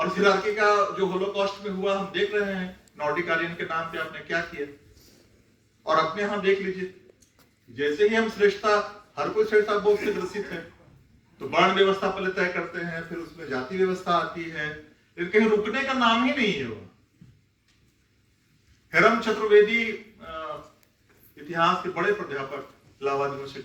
इस हायरार्की का जो होलोकॉस्ट में हुआ हम देख रहे हैं, नॉर्डिक आर्यन के नाम पे आपने क्या किया। और अपने यहां देख लीजिए, जैसे ही हम श्रेष्ठता, हर कोई श्रेष्ठता बोध से ग्रसित है, तो वर्ण व्यवस्था पहले तय करते हैं, फिर उसमें जाति व्यवस्था आती है, लेकिन कहीं रुकने का नाम ही नहीं है। वो हेरम चतुर्वेदी इतिहास के बड़े प्राध्यापक इलाहाबाद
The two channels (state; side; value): identical; both; correlation 1.00